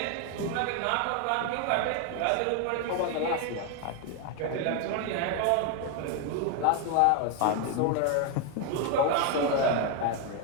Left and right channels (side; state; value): both; different; correlation 0.01